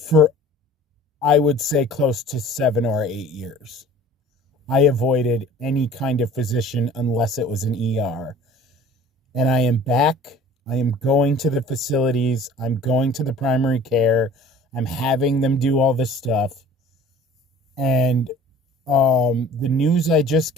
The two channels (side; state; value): both; normal; correlation 0.47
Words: for, I would say, close to 7 or 8 years. I avoided any kind of physician unless it was an ER. And I am back. I am going to the facilities. I'm going to the primary care. I'm having them do all this stuff. And the news I just